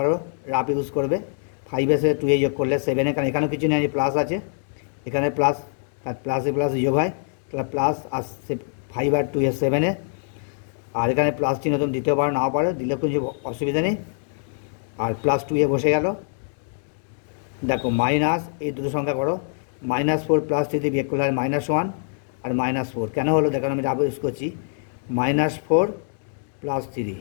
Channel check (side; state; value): right; silent; 63 dB below the other